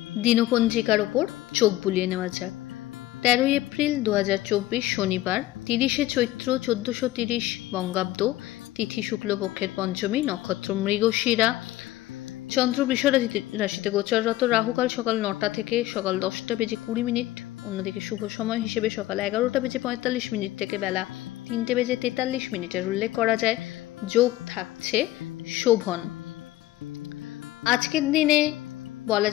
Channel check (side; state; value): right; quieter; 15.9 dB